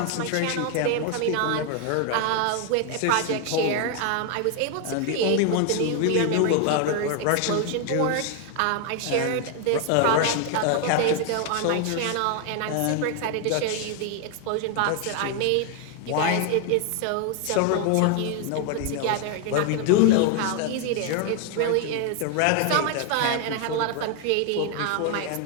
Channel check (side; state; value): both; different; correlation 0.00